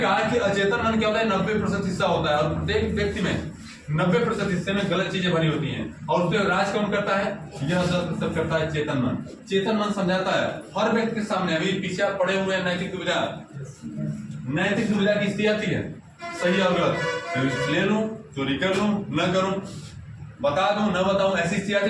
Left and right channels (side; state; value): both; identical; correlation 1.00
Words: कि अचेतन मन क्या होता है? 90% हिस्सा होता है और प्रत्येक व्यक्ति में 90% हिस्से में गलत चीजें भरी होती हैं। और उस पर राज कौन करता है? यह 10% करता है चेतन मन। चेतन मन समझाता है हर व्यक्ति के सामने। अभी पीछे आप पड़े हुए हैं नैतिक दुविधा की स्थिति आती है, सही और गलत, ले लूं, चोरी कर लूं, न करूं, बता दूं, न बताऊं, ऐसी स्थिति